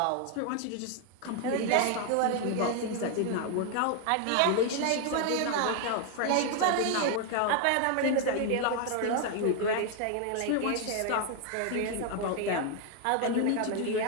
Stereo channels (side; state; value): both; different; correlation 0.01